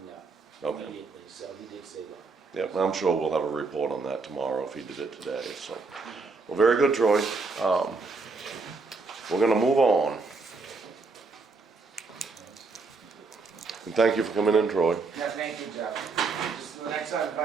up Okay. immediately, so he did say that. Yep, I'm sure we'll have a report on that tomorrow if he did it today, so. Well, very good, Troy. We're gonna move on. And thank you for coming in, Troy. Yeah, thank you, Jeff. Just the next time, if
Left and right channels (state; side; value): quieter; left; 4.1 dB